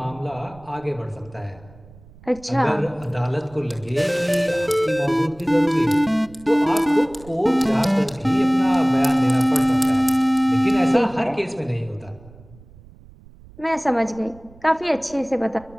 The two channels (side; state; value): right; noise; rumble, 23 dB below the sound